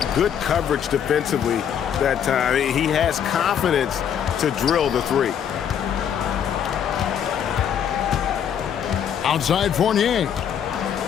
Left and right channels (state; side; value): quieter; right; 8.7 dB